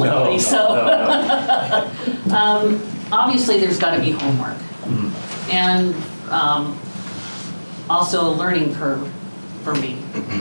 so. No. Obviously, there's got to be homework. Mm-hmm. and also a learning curve for me,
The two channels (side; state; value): both; inverted; correlation -1.00